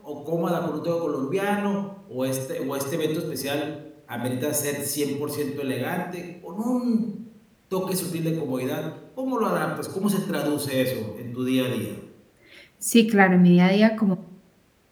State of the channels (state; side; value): identical; both; correlation 1.00